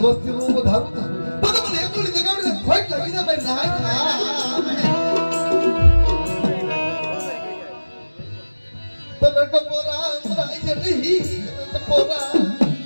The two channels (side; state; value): both; inverted; correlation -1.00